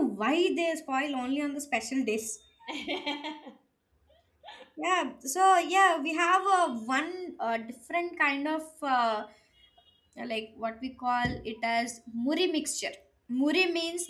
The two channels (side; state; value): both; identical; correlation 1.00